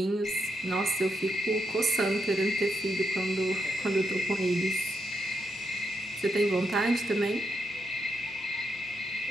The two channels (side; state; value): both; normal; correlation 0.82